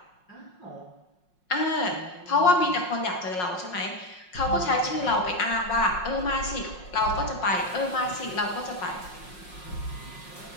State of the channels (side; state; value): right; late; 5.5 ms